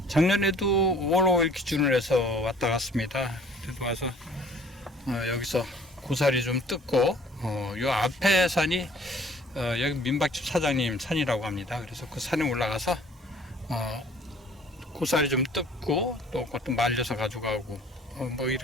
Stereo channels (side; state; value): both; normal; correlation 0.53